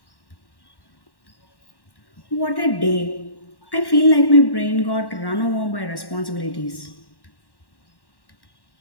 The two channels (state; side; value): late; right; 1.1 ms